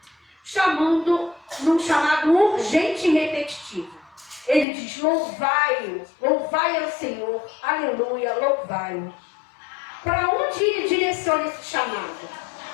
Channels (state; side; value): drops out; right; at 4.7 s